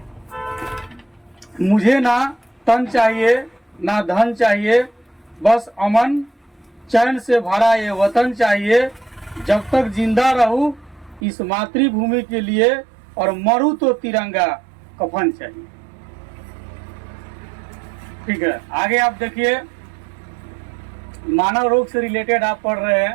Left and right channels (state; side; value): drops out; left; at 11.2 s